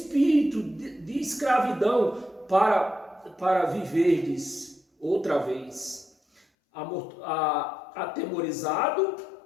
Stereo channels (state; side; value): drops out; right; at 6.5 s